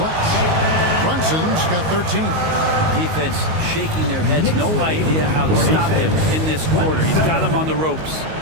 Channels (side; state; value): left; late; 19 ms